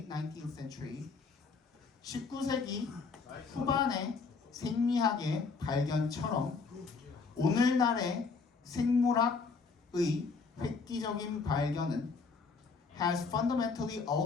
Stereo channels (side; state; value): right; quieter; 4.7 dB